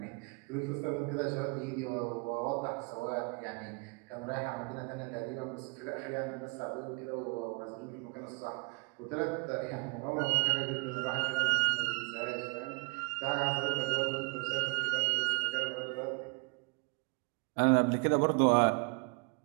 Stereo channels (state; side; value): quieter; left; 30.4 dB